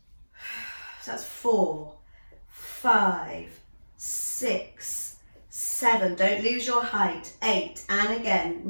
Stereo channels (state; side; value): inverted; both; correlation -1.00